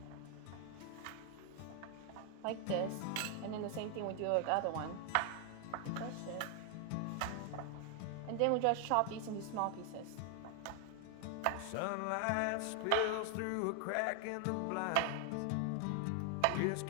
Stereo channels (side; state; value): both; different; correlation 0.00